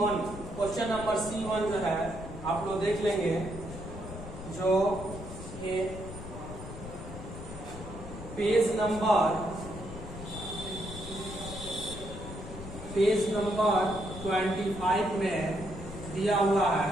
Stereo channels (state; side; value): noise; left; rumble, 11 dB below the sound